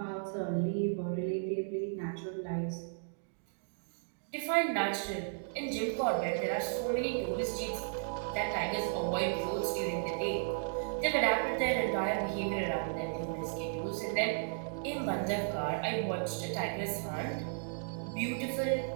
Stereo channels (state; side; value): silent; left; digital silence